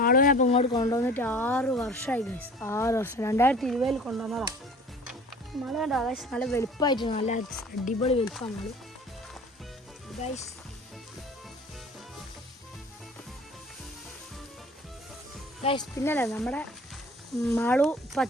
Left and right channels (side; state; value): both; normal; correlation 0.45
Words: അപ്പോൾ ഇങ്ങോട്ട് കൊണ്ടുവന്നിട്ട് 6 വർഷമായി ഗൈസ്. 6 വർഷം 2020 കൊണ്ടുവന്നതാണ്. മാളു കണ്ടോ ഗൈസ്, നല്ല വെളുപ്പമായിട്ട് നല്ല അടിപൊളി വെളുപ്പമാണ് മാളു ഗൈസ്. ഗൈസ് പിന്നല്ലേ നമ്മുടെ മാളു ഇപ്പോൾ